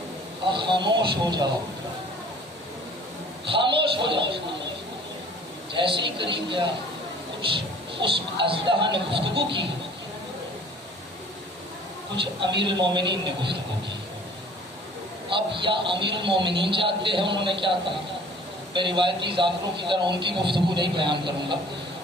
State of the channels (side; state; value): both; normal; correlation 0.50